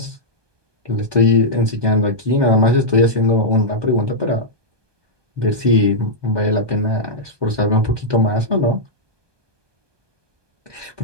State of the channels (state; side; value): late; left; 1.2 ms